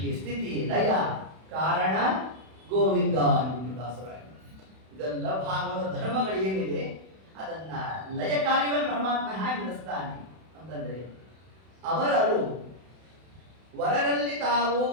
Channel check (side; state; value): left; late; 32 ms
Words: ಸ್ಥಿತಿ ಲಯ ಕಾರಣ ಗೋವಿಂದ ಅಂದ್ಬಿಟ್ಟು ದಾಸರಾಯ. ಇದೆಲ್ಲ ಭಾಗವತ ಧರ್ಮಗಳು ಏನಿದೆ ಅದನ್ನ ಲಯ ಕಾರ್ಯವನ್ನು ಪರಮಾತ್ಮ ಹೇಗೆ ನಡೆಸ್ತಾನೆ ಅಂತಂದ್ರೆ, ಅವರರು ವರರಲ್ಲಿ ತಾವು